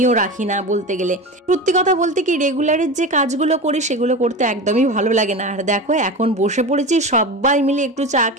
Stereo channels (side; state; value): both; normal; correlation 0.27